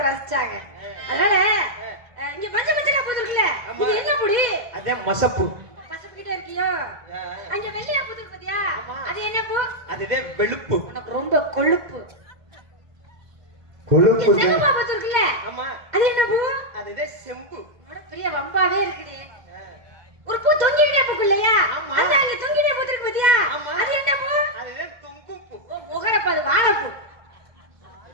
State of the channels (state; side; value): late; left; 2.1 ms